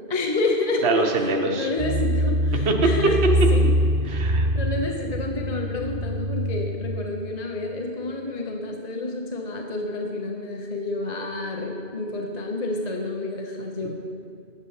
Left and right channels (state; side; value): late; left; 2.5 ms